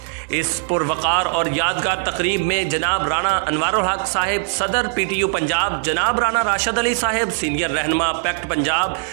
इस पुरवकार और यादगार तकरीब में जनाब राणा अनवारुल हक साहिब सदर PTU पंजाब, जनाब राणा राशिद अली साहिब सीनियर रहनुमा पैक्ट पंजाब,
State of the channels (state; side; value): silent; left; digital silence